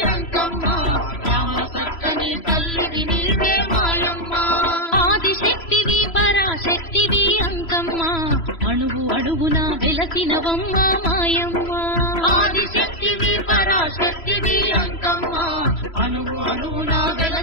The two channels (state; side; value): late; right; 3.0 ms